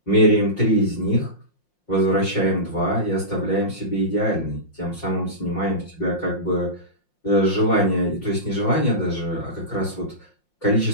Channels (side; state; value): right; late; 5.6 ms